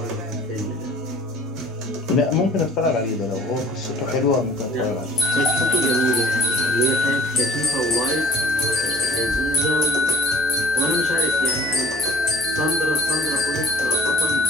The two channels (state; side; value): normal; both; correlation 0.49